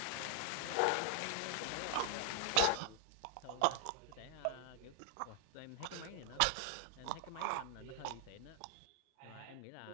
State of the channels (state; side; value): different; both; correlation 0.00